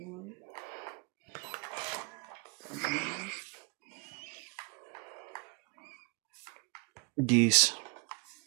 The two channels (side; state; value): left; quieter; 31.8 dB